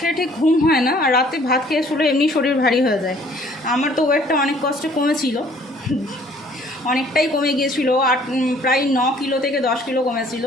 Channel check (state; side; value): normal; both; correlation 0.58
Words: ঠিক ঘুম হয় না, আর রাতে ভাত খেয়ে শুলে এমনি শরীর ভারী হয়ে যায়। আমার তো ওয়েটটা অনেক কষ্টে কমেছিল, অনেকটাই কমে গিয়েছিল, প্রায় 9 কিলো থেকে 10 কিলো কমেছিল।